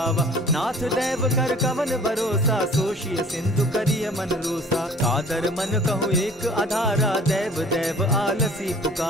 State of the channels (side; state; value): both; normal; correlation 0.49